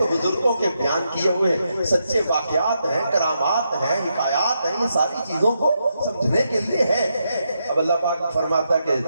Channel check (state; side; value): inverted; both; correlation -0.82